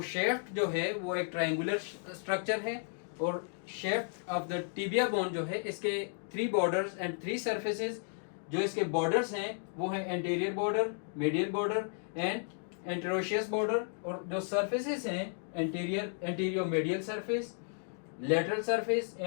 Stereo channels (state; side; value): silent; right; 55 dB below the other